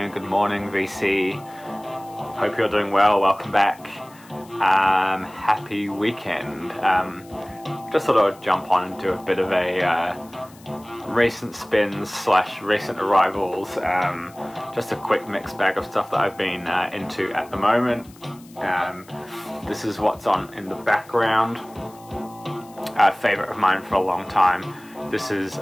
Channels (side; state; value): left; noise; hiss, 25 dB below the sound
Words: good morning, VC. Hope you're doing well. Welcome back. Happy weekend. Just thought I'd jump on and do a bit of a recent spins / recent arrivals. Just a quick mixed bag of stuff that I've been into at the moment. This is what's on in the background. A favorite of mine for a long time. This is